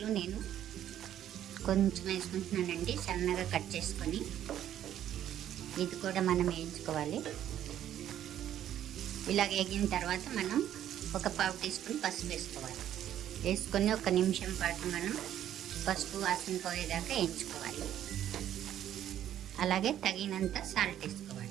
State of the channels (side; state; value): left; quieter; 11.2 dB